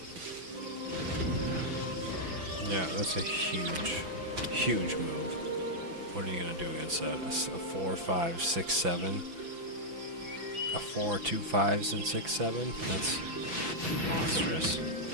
Yeah, that's a huge, huge move. What are you going to do against that? A 4, 5, 6, 7? A 4, 2 5s and 6, 7? That's monstrous.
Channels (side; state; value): left; late; 6.0 ms